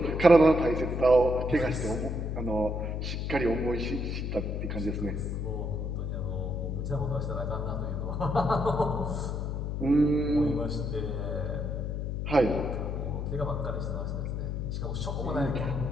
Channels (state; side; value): noise; left; hum, 2 dB below the sound